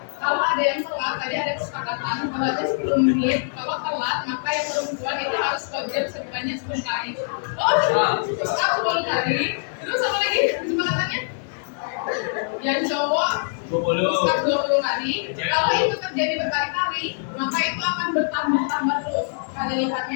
Kalau ada yang telat, tadi ada kesepakatan kalau ada 10 menit, kalau telat maka yang perempuan itu harus kojam sebanyak 10 kali. Oh, terus 10 kali. Terus apa lagi kesepakatannya? Yang cowok 20 kali. Kalau itu terjadi berkali-kali, maka itu akan bertambah terus kali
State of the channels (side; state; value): right; silent; 58 dB below the other